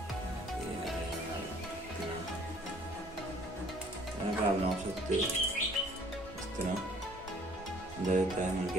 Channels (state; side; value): normal; both; correlation 0.57